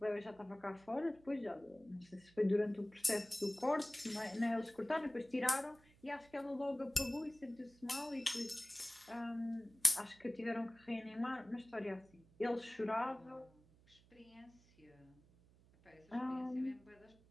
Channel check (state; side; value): noise; right; hum, 27 dB below the sound